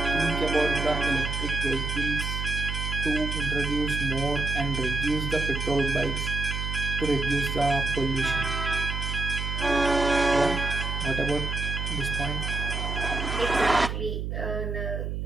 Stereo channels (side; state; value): right; noise; hum, 3 dB below the sound